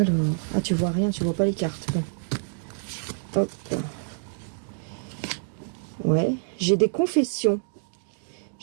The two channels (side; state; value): left; silent; digital silence